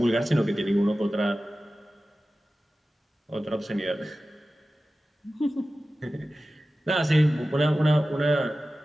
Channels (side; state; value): both; normal; correlation 0.95